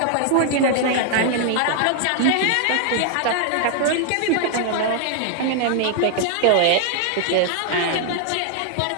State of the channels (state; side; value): different; both; correlation 0.00